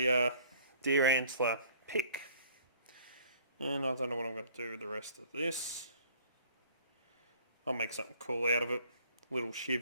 deer antler pick. And I don't know what I'm going to do with the rest of this. I'll make something cool out of it. Little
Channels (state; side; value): inverted; both; correlation -0.55